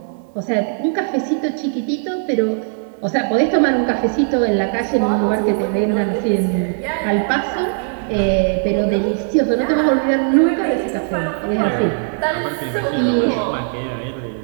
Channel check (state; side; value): silent; left; digital silence